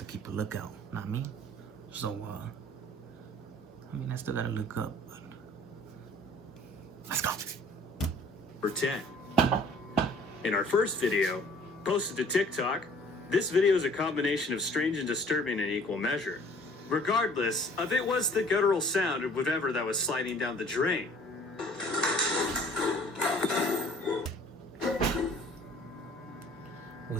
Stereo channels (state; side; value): normal; both; correlation 0.53